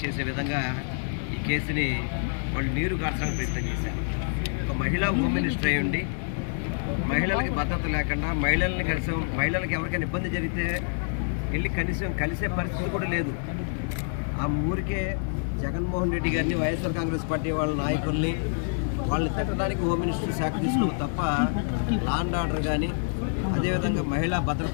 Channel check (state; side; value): silent; right; digital silence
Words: చేసే విధంగా ఈ కేసుని వాళ్ళు నీరు కార్చడానికి ప్రయత్నం చేశారు. ఒక మహిళా హోమ్ మినిస్టర్ అయి ఉండి మహిళలకి భద్రత లేకుండా మహిళలకి ఎవరికైనా ఇబ్బంది జరిగితే వెళ్ళి కనీసం కలిసే పరిస్థితి కూడా లేదు. ఆ ఊరికే జగన్మోహన్ రెడ్డి గారిని వైఎస్ఆర్ కాంగ్రెస్ పార్టీ వాళ్ళ నాయకుల్ని వాళ్ళని తిట్టడానికి హోమ్ మినిస్టర్ శాఖ తీసుకున్నాం తప్ప లా అండ్ ఆర్డర్ కానీ అదేవిధంగా మహిళా